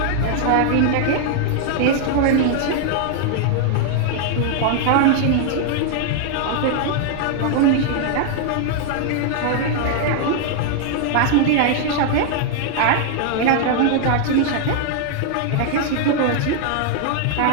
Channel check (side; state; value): both; different; correlation 0.00